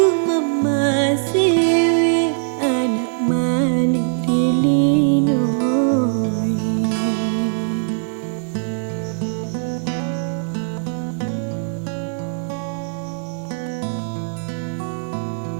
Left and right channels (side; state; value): left; silent; digital silence